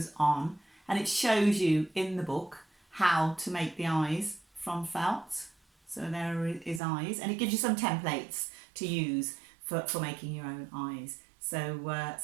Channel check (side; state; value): left; drops out; at 6.8 s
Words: on, and it shows you in the book how to make the eyes from felt. So there are his eyes, and it gives you some templates to use for making your own eyes. So